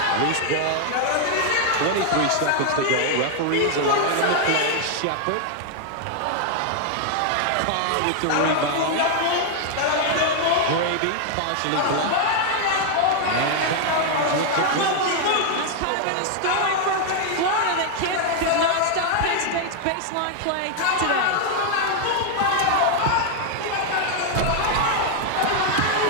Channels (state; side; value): different; both; correlation 0.00